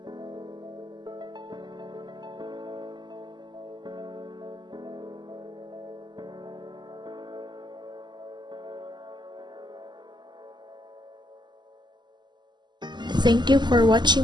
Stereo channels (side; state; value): left; late; 0.21 ms